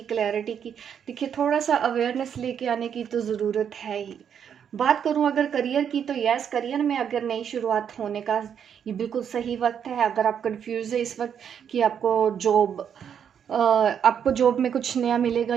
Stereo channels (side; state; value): left; quieter; 8.2 dB